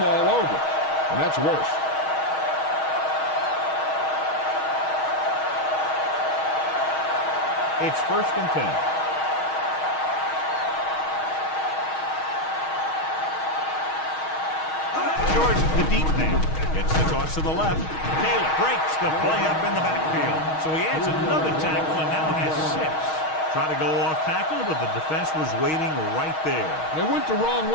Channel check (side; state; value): right; late; 6.4 ms